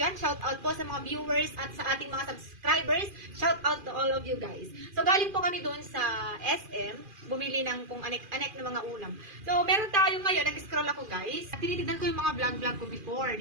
Shout out po sa mga viewers at sa ating mga subscribers. Shout out to all of you guys. So galing po kami doon sa SM, bumili ng kung anek-anek na mga ulam. So meron tayo ngayon, nag-scroll ako guys. Tinitignan ko yung mga vlog ko before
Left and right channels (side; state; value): left; late; 2.4 ms